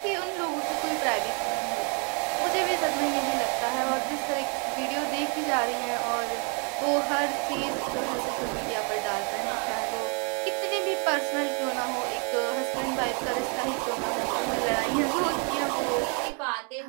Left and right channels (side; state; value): left; quieter; 37.5 dB